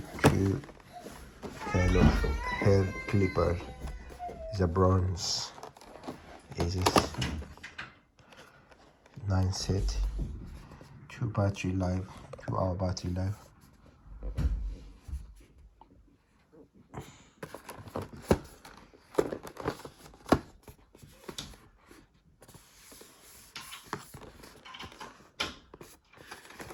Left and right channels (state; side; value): identical; both; correlation 1.00